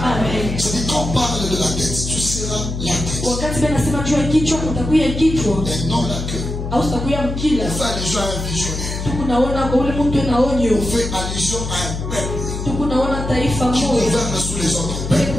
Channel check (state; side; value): noise; left; hum, 5 dB below the sound